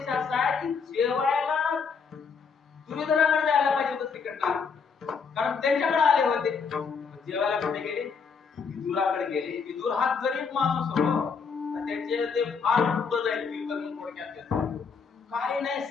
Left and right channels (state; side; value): quieter; right; 5.6 dB